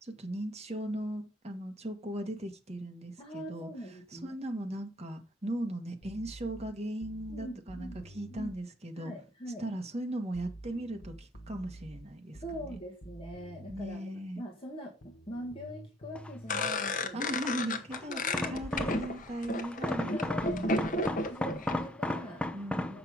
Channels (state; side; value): normal; both; correlation 0.62